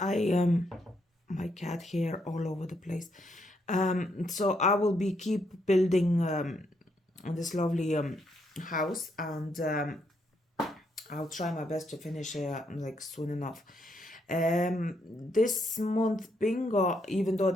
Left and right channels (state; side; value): normal; both; correlation 0.76